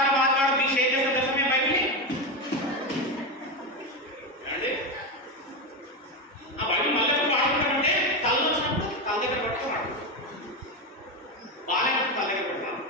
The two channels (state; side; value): normal; both; correlation 0.13